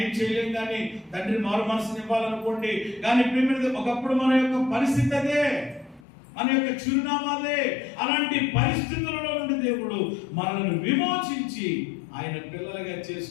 ఏం చేయలేం. కానీ తండ్రి మారు మనసుని ఇవ్వాలనుకోండి, కానీ ఒకప్పుడు మన యొక్క పరిస్థితి అదే, మన యొక్క చిరునామాదే. అలాంటి పరిస్థితులలో నుండి దేవుడు మనల్ని విమోచించి ఆయన పిల్లలుగా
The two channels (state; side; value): drops out; right; at 6.1 s